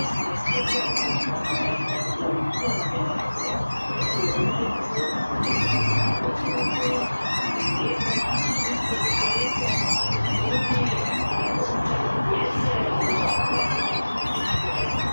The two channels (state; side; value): inverted; both; correlation -1.00